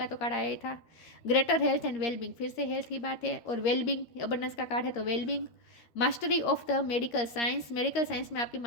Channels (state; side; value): late; right; 13 ms